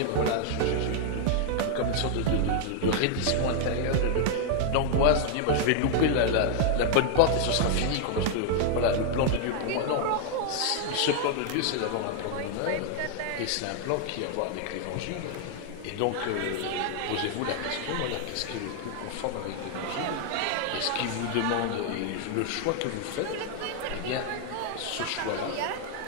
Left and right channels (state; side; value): different; both; correlation 0.00